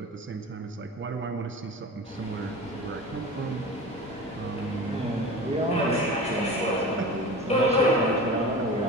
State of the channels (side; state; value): both; normal; correlation 0.33